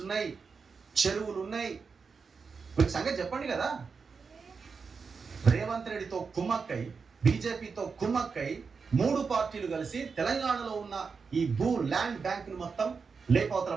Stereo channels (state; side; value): quieter; left; 5.2 dB